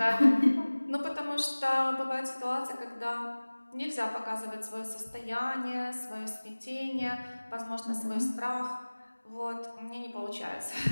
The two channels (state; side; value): inverted; both; correlation -1.00